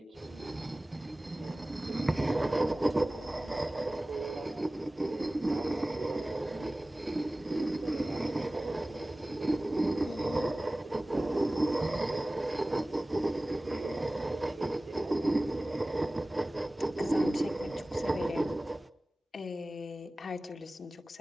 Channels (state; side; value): normal; both; correlation 0.98